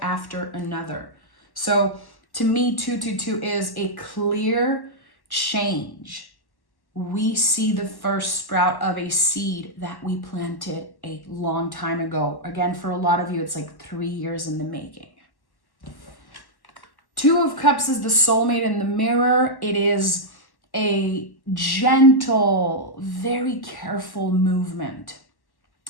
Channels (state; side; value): late; right; 1.1 ms